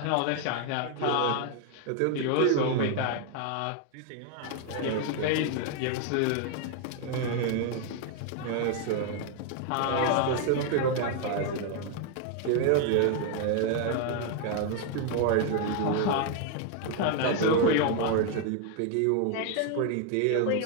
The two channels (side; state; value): both; different; correlation 0.00